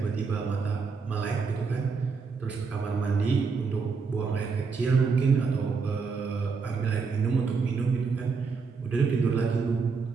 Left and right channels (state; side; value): quieter; left; 5.0 dB